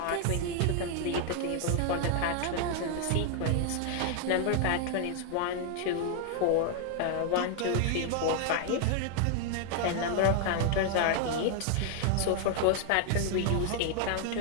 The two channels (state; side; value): different; both; correlation 0.00